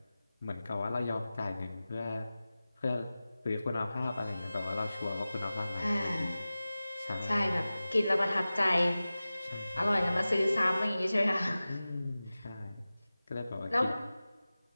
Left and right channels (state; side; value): inverted; both; correlation -0.97